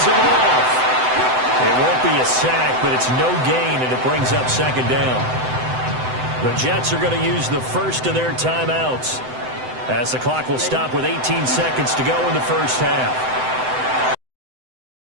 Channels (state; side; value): late; left; 7.9 ms